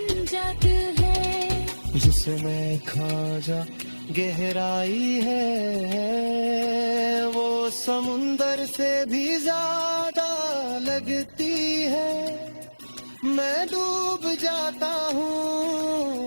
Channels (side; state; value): both; inverted; correlation -1.00